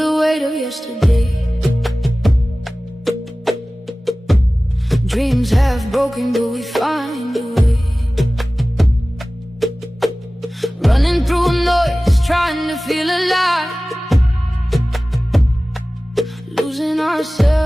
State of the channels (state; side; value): normal; both; correlation 0.97